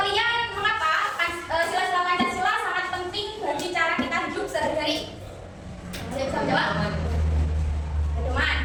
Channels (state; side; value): identical; both; correlation 1.00